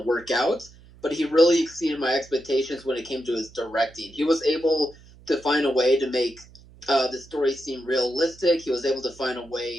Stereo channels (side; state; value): right; noise; hum, 23 dB below the sound